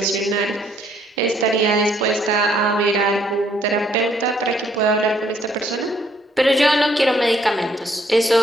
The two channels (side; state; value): both; normal; correlation 0.67